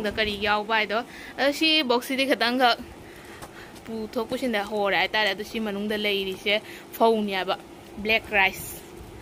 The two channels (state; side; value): identical; both; correlation 1.00